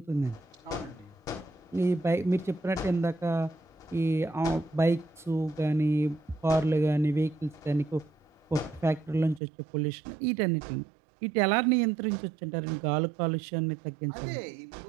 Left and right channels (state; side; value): drops out; left; at 9.4 s